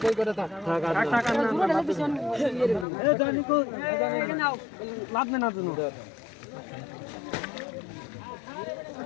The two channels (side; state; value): right; drops out; at 2.9 s